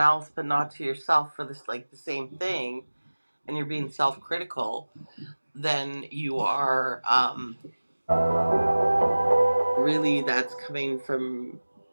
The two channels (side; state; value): both; inverted; correlation -1.00